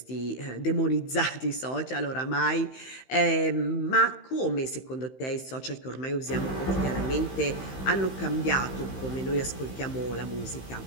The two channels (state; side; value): late; right; 15 ms